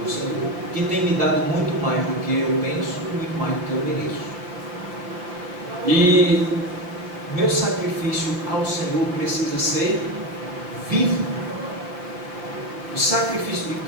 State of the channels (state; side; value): late; left; 5.6 ms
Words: o Senhor, que tem me dado muito mais do que eu penso e muito mais do que eu mereço. E meu sacrifício ao Senhor precisa ser vivo. O sacrifício de